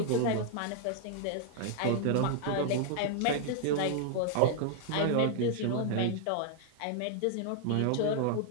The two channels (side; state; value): both; different; correlation -0.01